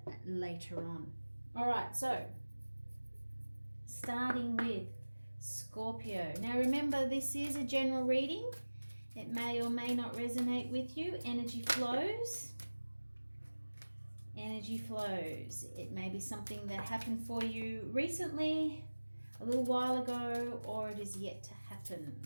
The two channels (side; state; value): both; inverted; correlation -1.00